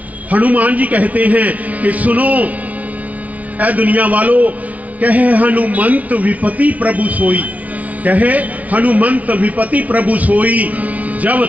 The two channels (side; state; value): left; late; 0.070 ms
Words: हनुमान जी कहते हैं कि सुनो ऐ दुनिया वालों, कहे हनुमंत विपति प्रभु सोई, कहे हनुमंत विपति प्रभु सोई, जब